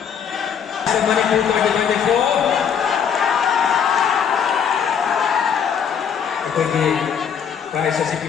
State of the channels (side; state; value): right; quieter; 7.7 dB